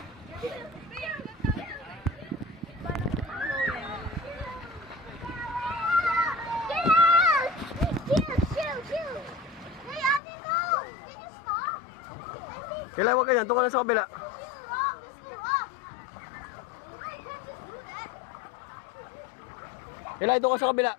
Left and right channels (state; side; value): drops out; right; at 10.2 s